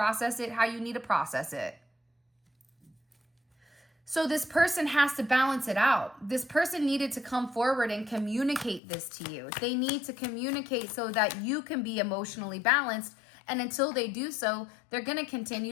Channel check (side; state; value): right; drops out; at 8.8 s